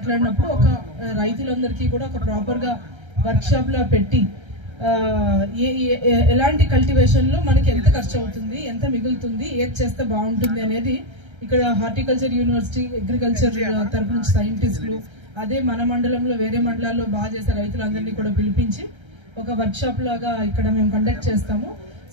ఒక రైతులందరికీ కూడా ఒక ప్రాపర్ గా వర్క్ షాప్ లో పెట్టి ఎలాంటి కల్టివేషన్ లో మనకి ఎంత ఖర్చు అవుతుంది, ఎంత మిగులుతుంది, ఏది చేస్తే బాగుంటుంది అనేది ఇక్కడ హార్టికల్చర్ యూనివర్సిటీ, అగ్రికల్చర్ తరపు నుంచి సైంటిస్టులు, అదే మన మండలంలో వేరే మండలాల్లో బాగా చేసే రైతులందరినీ కూడా పిలిపించి ఒక వర్క్ షాప్ లాగా ఇక్కడ మేము కండక్ట్ చేస్తాము.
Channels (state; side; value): late; left; 1.3 ms